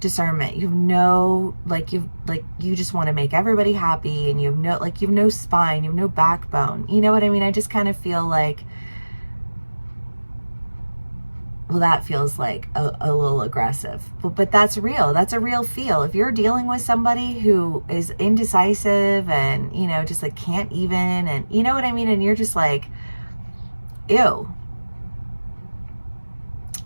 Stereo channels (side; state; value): both; inverted; correlation -1.00